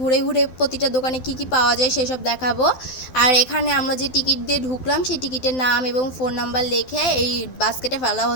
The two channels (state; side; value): late; right; 12 ms